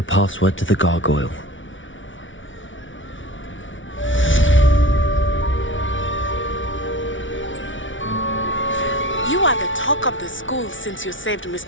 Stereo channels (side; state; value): right; late; 0.56 ms